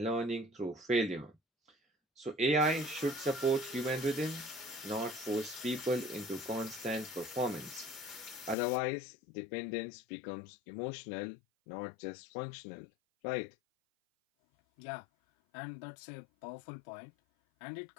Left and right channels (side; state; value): right; drops out; at 8.6 s